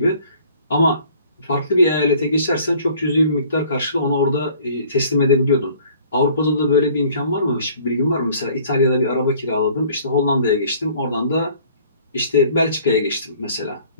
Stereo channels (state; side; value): inverted; both; correlation -0.54